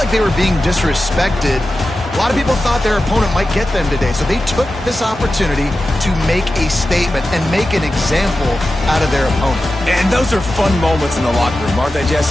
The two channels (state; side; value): normal; both; correlation 0.93